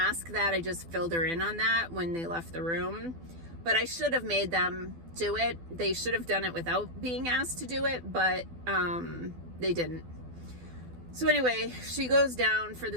that. I just filled her in on that when they left the room. But I should have made them do it. They should have done it without being asked to do it, but they didn't. So anyway, she goes down for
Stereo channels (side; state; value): left; late; 12 ms